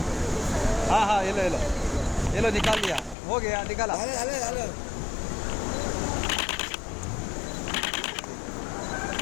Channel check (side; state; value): right; drops out; at 3.2 s